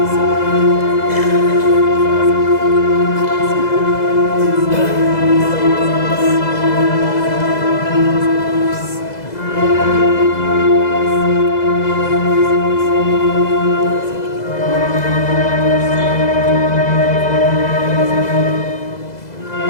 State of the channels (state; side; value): late; right; 2.0 ms